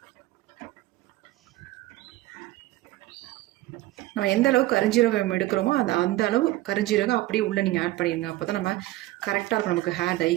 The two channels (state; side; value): quieter; left; 17.3 dB